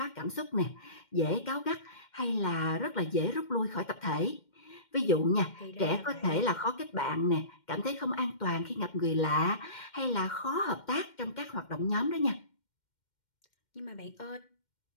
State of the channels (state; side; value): late; right; 2.1 ms